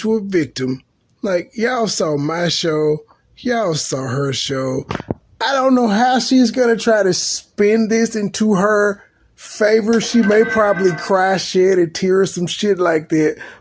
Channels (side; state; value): both; identical; correlation 1.00